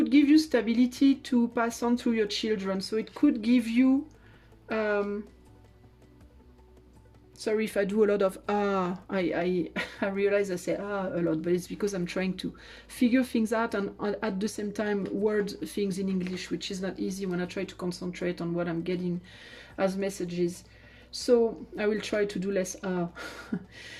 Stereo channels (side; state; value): both; identical; correlation 1.00